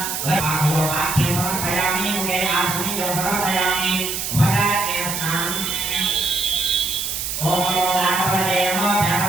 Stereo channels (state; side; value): noise; right; hiss, 3 dB below the sound